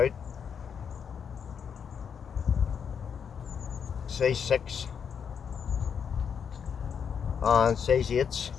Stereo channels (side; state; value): right; quieter; 7.2 dB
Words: Size 6 and size 8s